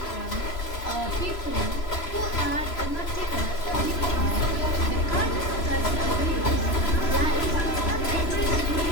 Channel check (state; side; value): late; right; 3.0 ms